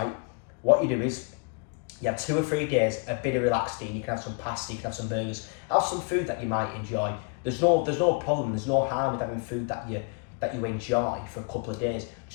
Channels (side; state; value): right; quieter; 36.2 dB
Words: what you do is you have 2 or 3 days, a bit of relaxed eating. You can have some pasta, you can have some burgers, have some food that you might enjoy. There's no problem, there's no harm with having food that you enjoy for a couple of days.